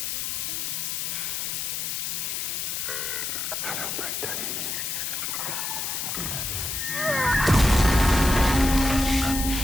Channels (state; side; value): noise; left; hiss, 2 dB below the sound